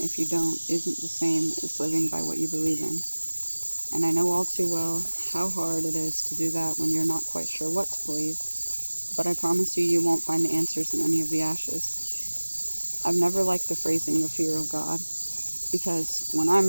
if you don't isn't the same as living by what you believe in. And I know all too well how hard it is to do that when you're not quite sure what to believe, but I promise you won't find the answers in any of the ashes. I've never liked the phrasing the fear of God, because when I'm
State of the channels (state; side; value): inverted; both; correlation -1.00